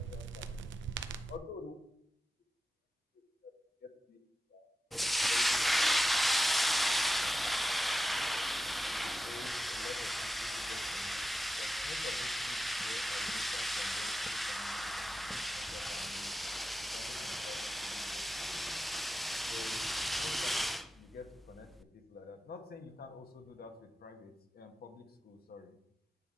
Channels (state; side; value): normal; both; correlation 0.92